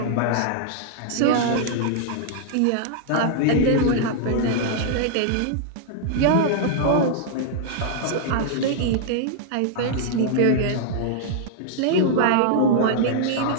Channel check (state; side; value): different; both; correlation -0.01